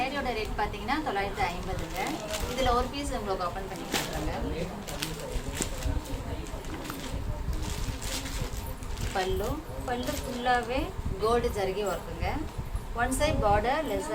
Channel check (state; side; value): identical; both; correlation 1.00